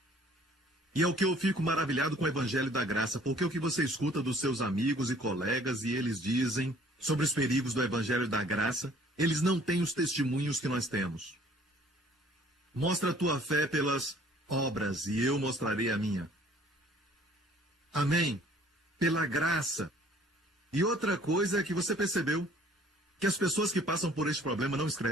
E é o que eu fico maravilhado com o Evangelho da Graça, porque o que você escuta dos seus amigos e colegas e eles dizem sobre os perigos do Evangelho da Graça, eles não têm os testemunhos que nós temos. Mostra a tua fé pelas obras e eu mostrarei a minha. Amém? Pela graça. E outra coisa é que você percebeu que as pessoas que passam por este problema não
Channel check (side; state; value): both; normal; correlation 0.55